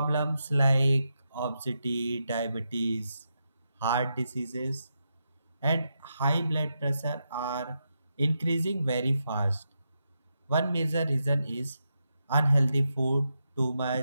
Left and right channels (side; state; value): both; inverted; correlation -0.85